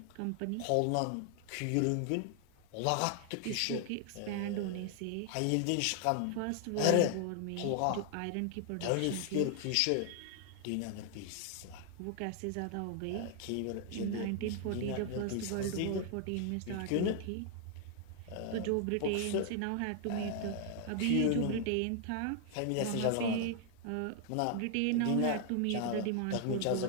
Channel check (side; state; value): both; different; correlation 0.00